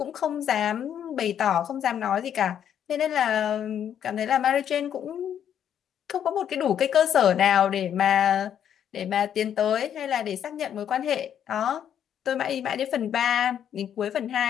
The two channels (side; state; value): right; quieter; 9.3 dB